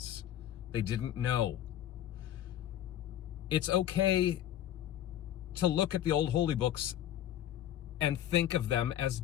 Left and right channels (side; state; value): right; quieter; 11.7 dB